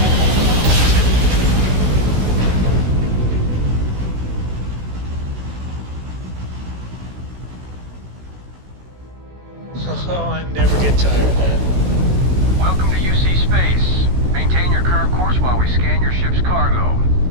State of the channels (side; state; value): left; late; 16 ms